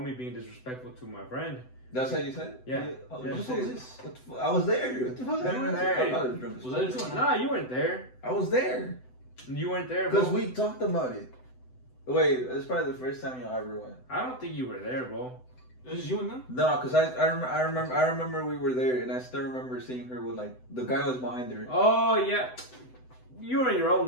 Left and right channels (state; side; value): late; right; 7.9 ms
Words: being disrespectful to my friend. That's how you said it? Yeah. What the fuck was this? I was there. What the fuck? You were there. I thought it was drunk. Was that a joke? Nah, you weren't there. I was there. You weren't there, bro. Because we talked about it. Wait, it's probably the first time y'all ever went. I don't think you were there, bro. It was you and them? No, because I remember we were there, and I still remember seeing her with like the guy was behind her. Oh yeah, you were in your own